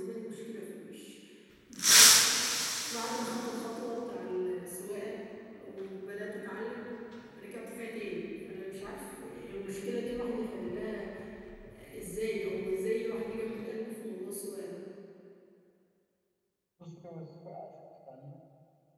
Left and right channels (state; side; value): identical; both; correlation 1.00